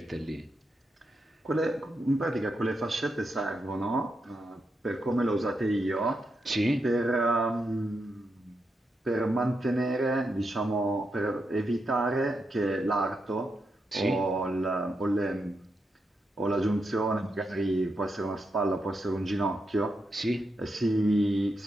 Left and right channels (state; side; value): normal; both; correlation 0.84